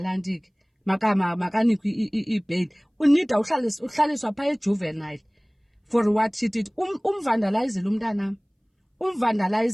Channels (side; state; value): both; identical; correlation 1.00